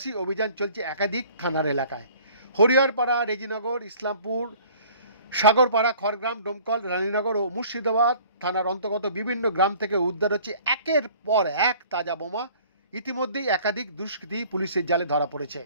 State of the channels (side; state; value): both; inverted; correlation -0.51